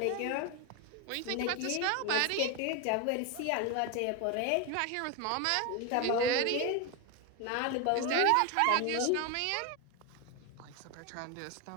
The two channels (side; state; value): both; different; correlation 0.02